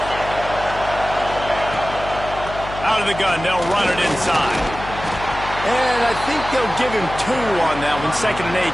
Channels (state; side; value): noise; left; hum, 11 dB below the sound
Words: Out of the gun, they'll run it inside. And I think they'll give him 2 on that one. 2nd and 8